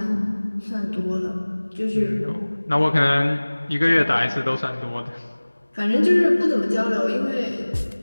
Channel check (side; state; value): both; inverted; correlation -1.00